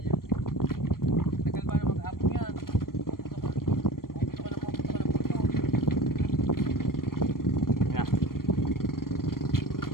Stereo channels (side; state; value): right; late; 0.92 ms